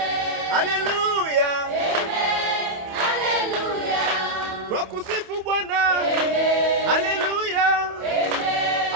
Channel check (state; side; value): late; left; 28 ms